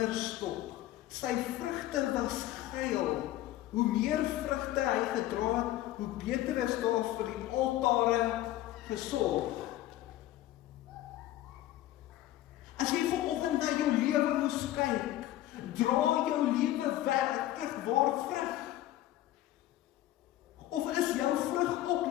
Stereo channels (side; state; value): right; quieter; 14.4 dB